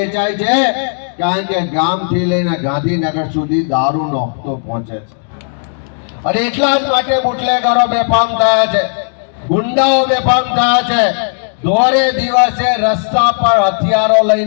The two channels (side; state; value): right; silent; digital silence